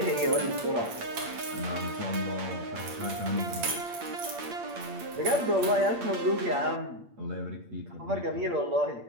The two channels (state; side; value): late; left; 9.0 ms